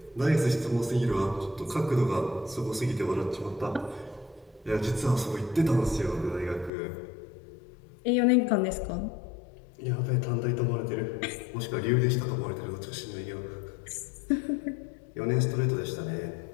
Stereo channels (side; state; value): right; drops out; at 6.7 s